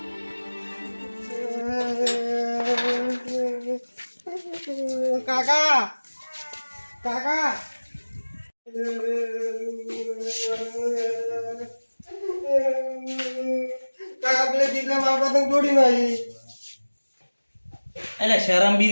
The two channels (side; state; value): both; inverted; correlation -1.00